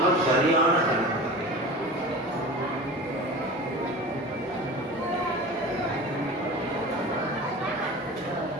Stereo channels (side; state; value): both; normal; correlation 0.34